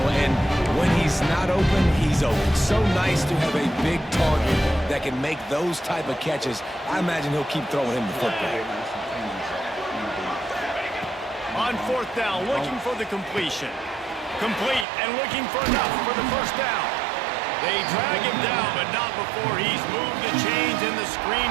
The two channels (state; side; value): drops out; left; at 14.9 s